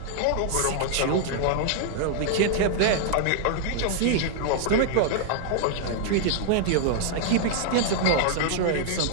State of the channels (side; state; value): both; different; correlation -0.01